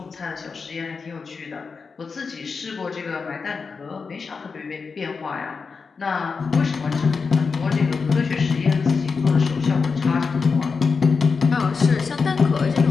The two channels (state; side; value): quieter; right; 5.0 dB